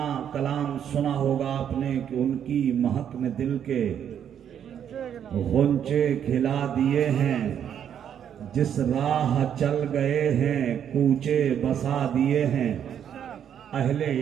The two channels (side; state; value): left; quieter; 9.0 dB